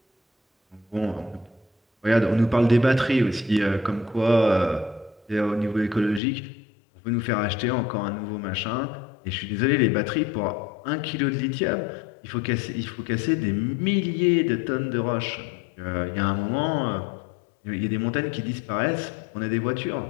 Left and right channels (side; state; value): right; drops out; at 6.2 s